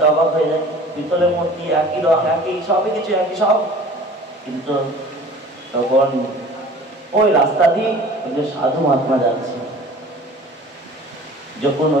অবাক হয়ে যায়, পিতলের মূর্তি একই রং, একই সবই কিছু একই সব। কিন্তু তখন ওই রাস্তা দিয়ে সাধু মহাত্মা যাচ্ছে, যখন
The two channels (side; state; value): both; normal; correlation 0.45